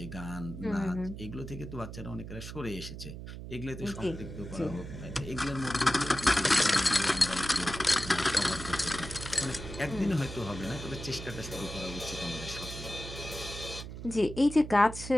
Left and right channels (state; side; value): noise; right; hum, 10 dB below the sound